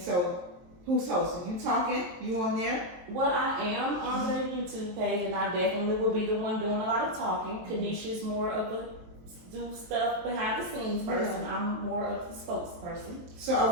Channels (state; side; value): late; left; 23 ms